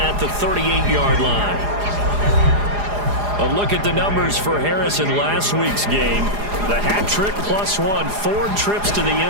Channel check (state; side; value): late; left; 4.9 ms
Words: the 38-yard line. A look at the numbers for Harris in last week's game. The hat trick +1, 4 trips to the